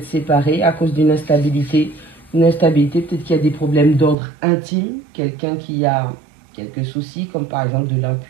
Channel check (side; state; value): left; drops out; at 4.2 s